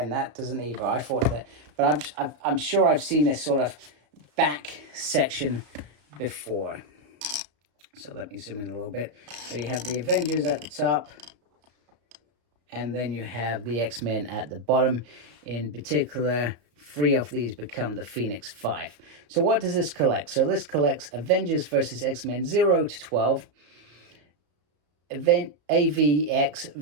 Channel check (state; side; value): late; left; 34 ms